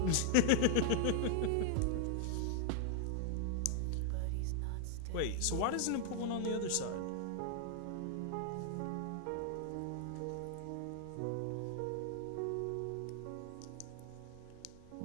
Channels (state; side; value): different; both; correlation 0.00